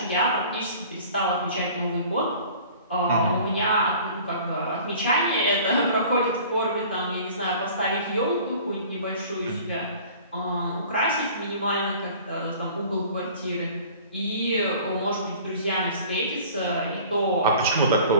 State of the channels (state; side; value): inverted; both; correlation -0.47